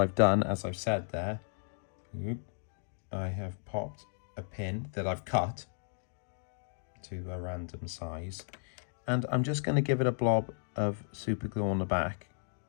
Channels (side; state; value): right; silent; digital silence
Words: done, as I've said there, I have popped a pin that I've cut to a random size, and I'm just going to give it a blob of super glue on the back,